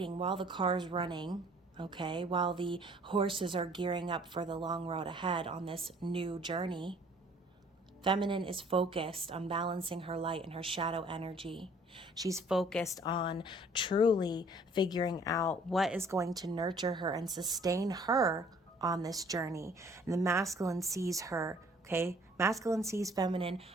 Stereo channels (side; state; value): both; normal; correlation 0.56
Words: while the car's running, okay, while the horses are gearing up for the long road ahead on this new journey, feminine is focused on balancing her light and her shadow energy. She's focused on truly figuring out what is going to nurture her and sustain her on this journey. And the masculine sees her, okay? Masculine sees feminine